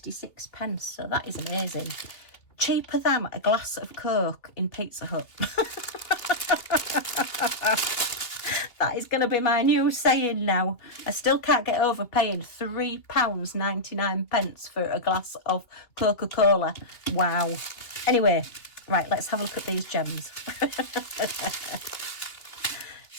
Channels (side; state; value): right; late; 3.0 ms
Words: so that is amazing. Cheaper than a glass of Coke in Pizza Hut. That is going to be my new saying now. I still can't get over paying £3.99 for a glass of Coca-Cola. Wow. Anyway, right, let's have a look at these gems.